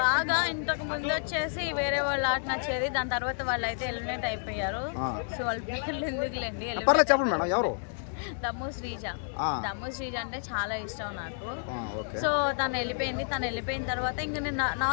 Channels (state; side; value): silent; right; 58 dB below the other